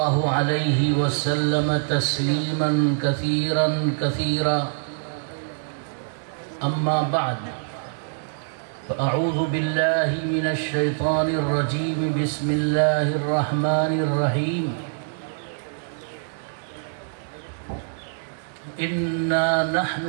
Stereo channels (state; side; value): silent; left; digital silence